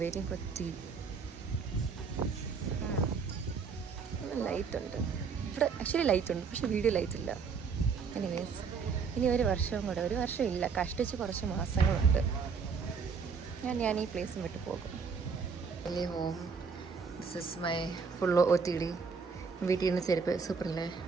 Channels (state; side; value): quieter; left; 5.5 dB